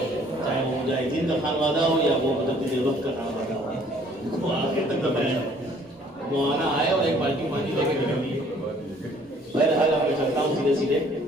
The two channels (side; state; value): both; normal; correlation 0.58